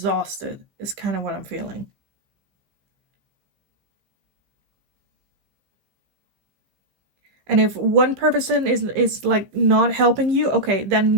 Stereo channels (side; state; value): left; late; 15 ms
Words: is kind of what I'm feeling. And if one person is like not helping you, okay, then